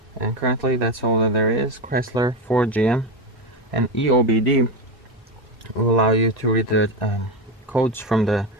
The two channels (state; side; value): normal; both; correlation 0.16